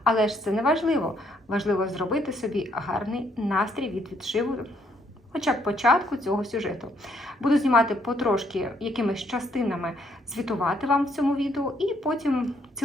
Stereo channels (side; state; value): both; normal; correlation 0.70